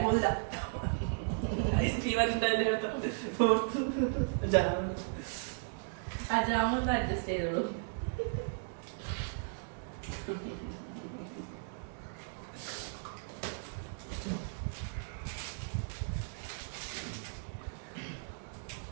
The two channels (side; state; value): left; silent; digital silence